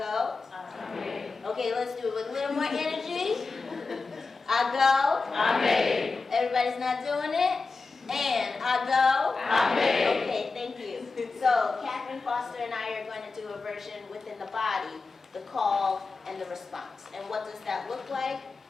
I may. Okay, let's do it with a little more energy. I go. I may. Everybody's not doing it? And I go. I may. Okay, thank you. So Catherine Foster and I are going to do a version within the body, the call and the response. And what does that look like?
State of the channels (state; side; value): quieter; right; 4.1 dB